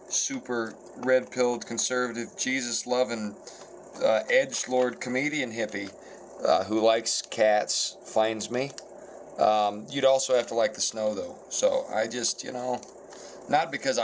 super red-pilled, conservative, Jesus-loving, edgelord comedian hippie who likes cats finds me. You'd also have to like the snow, though. So I just, not because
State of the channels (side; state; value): both; identical; correlation 1.00